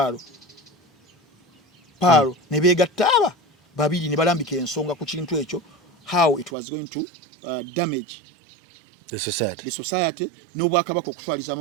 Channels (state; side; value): drops out; left; at 6.5 s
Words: Palo ne beegattaba babiri ne balambika ensonga ku kintu ekyo how it was going to damage the society n'obwakabaka